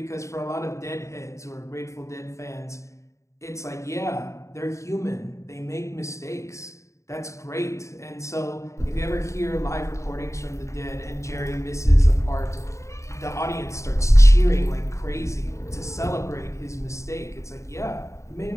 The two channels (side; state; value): right; late; 0.14 ms